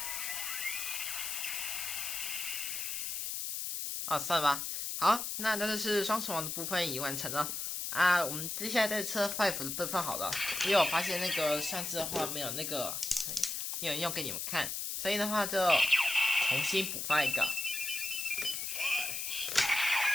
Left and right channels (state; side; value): noise; left; hiss, 3 dB below the sound